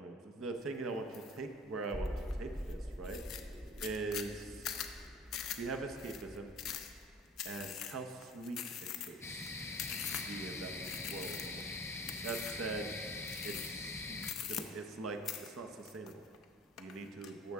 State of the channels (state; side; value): normal; both; correlation 0.45